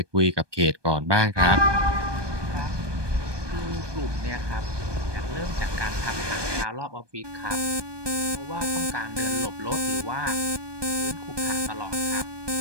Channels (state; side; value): late; left; 1.2 ms